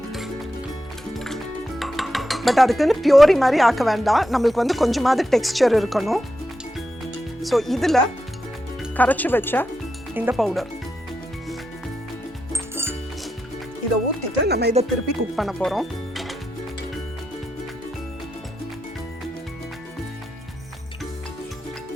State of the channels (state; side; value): normal; both; correlation 0.86